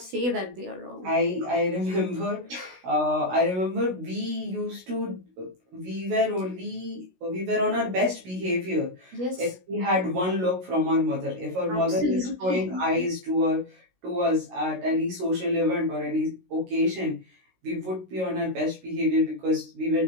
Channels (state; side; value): late; left; 16 ms